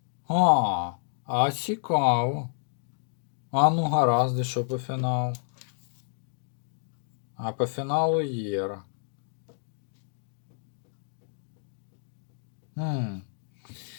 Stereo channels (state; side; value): silent; right; digital silence